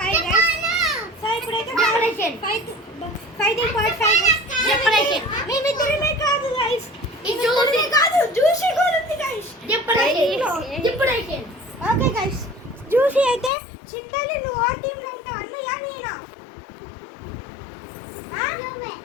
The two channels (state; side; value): drops out; right; at 13.5 s